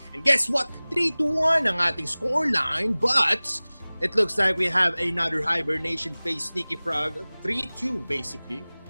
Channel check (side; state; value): both; inverted; correlation -1.00